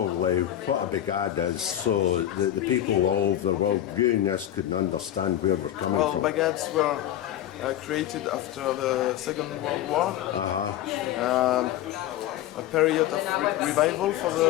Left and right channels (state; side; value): quieter; right; 12.2 dB